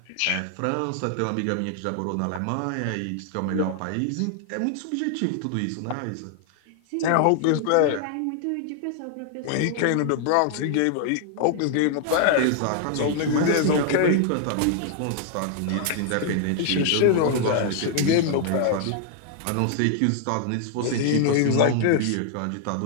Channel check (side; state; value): both; different; correlation 0.00